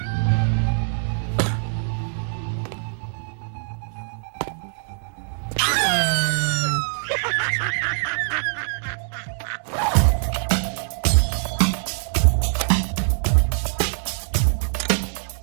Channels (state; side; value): silent; left; 63 dB below the other